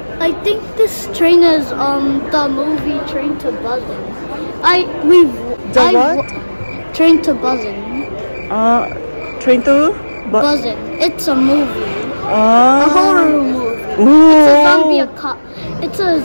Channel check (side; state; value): both; inverted; correlation -1.00